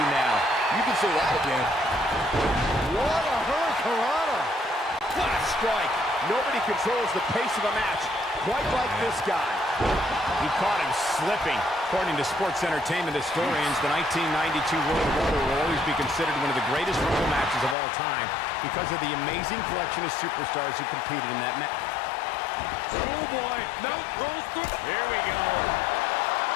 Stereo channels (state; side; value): drops out; right; at 17.8 s